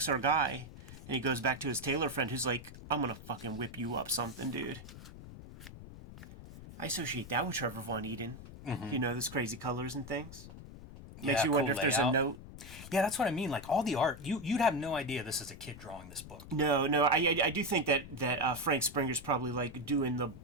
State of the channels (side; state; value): left; noise; rumble, 15 dB below the sound